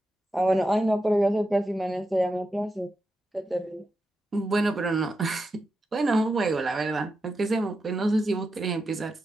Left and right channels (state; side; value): normal; both; correlation 0.88